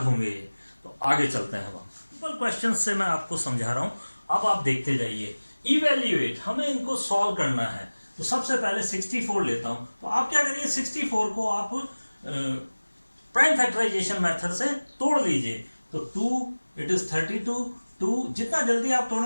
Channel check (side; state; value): both; inverted; correlation -1.00